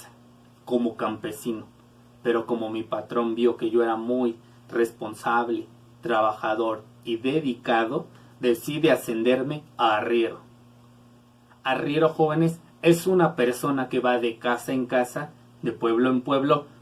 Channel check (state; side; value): identical; both; correlation 1.00